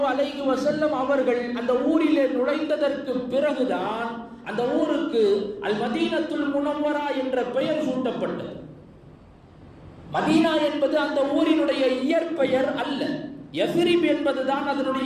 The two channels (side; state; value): both; identical; correlation 1.00